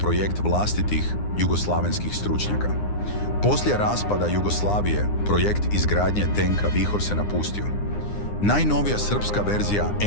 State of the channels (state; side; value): late; right; 9.8 ms